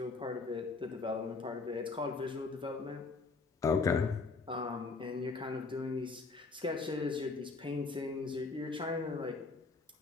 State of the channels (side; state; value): right; quieter; 4.1 dB